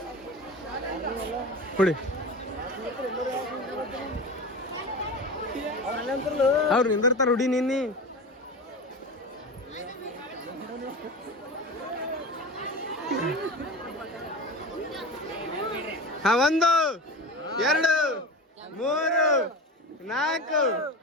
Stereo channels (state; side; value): normal; both; correlation 0.29